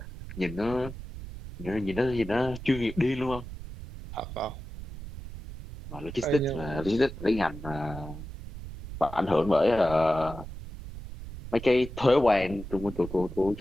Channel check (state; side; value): noise; right; rumble, 11 dB below the sound